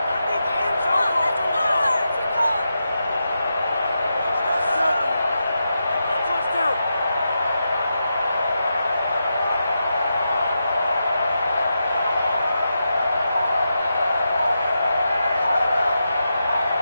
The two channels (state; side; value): inverted; both; correlation -0.87